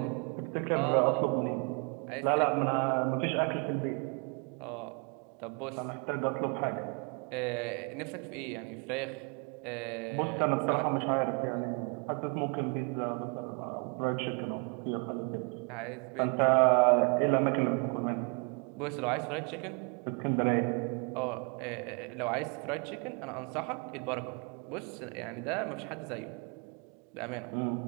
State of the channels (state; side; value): quieter; left; 34.8 dB